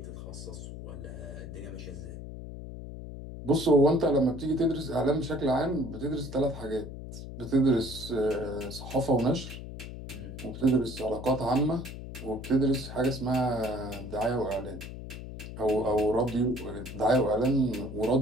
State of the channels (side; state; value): left; noise; hum, 10 dB below the sound